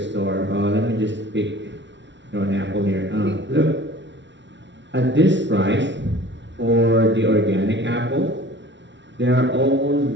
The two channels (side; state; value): left; late; 0.52 ms